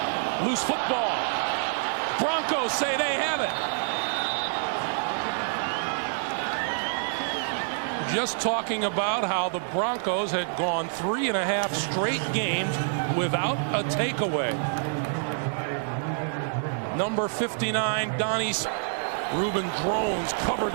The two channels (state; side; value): silent; left; digital silence